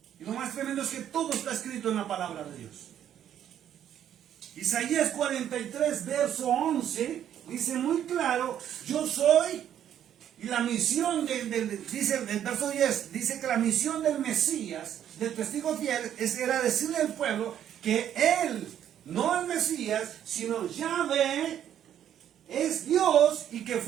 Y lo más tremendo es que todo está escrito en la palabra de Dios. Isaías 43, verso 11, dice muy claro, yo soy, y la misión, dice el verso 10, dice que la misión del Mesías, del testigo fiel, era decirle al pueblo que él, no el Mesías, sino Yahvé, es Dios y que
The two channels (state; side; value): quieter; left; 10.2 dB